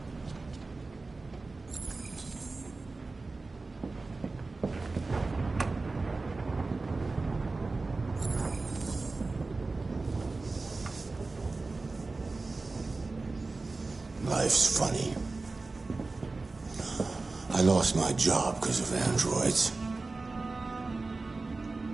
Life's funny. I lost my job because of androids.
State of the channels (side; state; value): left; quieter; 3.6 dB